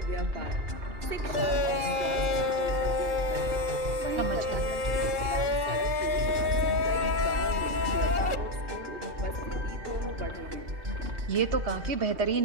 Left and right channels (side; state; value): left; late; 2.4 ms